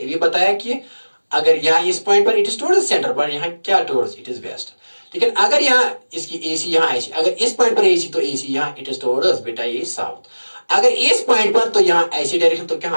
भी बताया कि अगर यहां इस पॉइंट पर it is towards the centre, पर यहां क्या टुवर्ड्स? It is waste. लेकिन अगर यहाँ इसकी एसी यहाँ ऐसी, अगर इस पॉइंट पर एसी तो एसी यहाँ इट इज टुवर्ड्स बेटा ये साउथ। अगर इस पॉइंट पर तो यहाँ ऐसी डायरेक्शन तो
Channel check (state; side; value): inverted; both; correlation -1.00